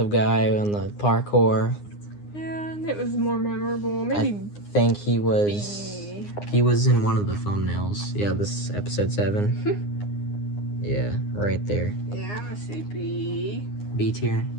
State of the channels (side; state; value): right; late; 9.7 ms